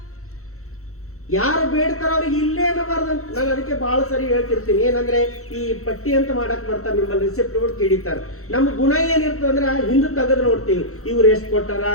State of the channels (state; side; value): late; right; 0.64 ms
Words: ಯಾರು ಬೇಡ್ತಾರ ಅವ್ರಿಗೆ ಇಲ್ಲೇ ಅನ್ನಬಾರ್ದಂತ. ನಾನು ಅದಕ್ಕೆ ಬಹಳ ಸರಿ ಹೇಳ್ತಿರ್ತೀನಿ. ಏನಂದ್ರೆ ಈ ಪಟ್ಟಿ ಅಂತ ಮಾಡಕ್ ಬರ್ತಾರೆ, ನಿಮ್ಮಲ್ಲಿ ರಿಸಿಪ್ಟ್ ಗಳು ಕಿಡಿತಾರ. ನಮ್ಮ ಗುಣ ಏನಿರ್ತದೆ ಅಂದ್ರೆ ಹಿಂದೆ ತೆಗೆದು ನೋಡ್ತೀವಿ, ಇವ್ರು ಎಷ್ಟು ಕೊಟ್ಟಾರ,